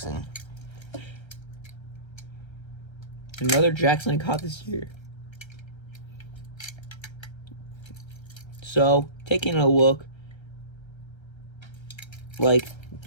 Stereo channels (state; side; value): late; right; 1.3 ms